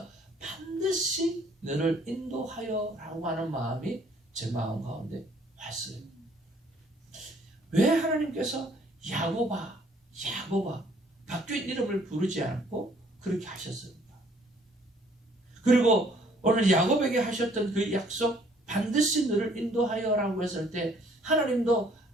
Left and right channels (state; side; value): normal; both; correlation 0.61